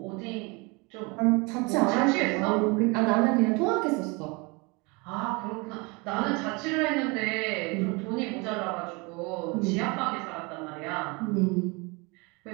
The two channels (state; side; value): quieter; left; 28.0 dB